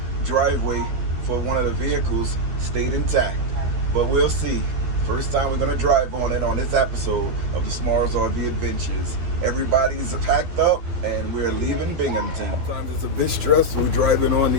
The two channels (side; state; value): left; late; 12 ms